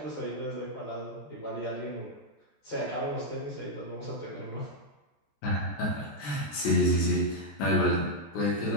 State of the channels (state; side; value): late; right; 14 ms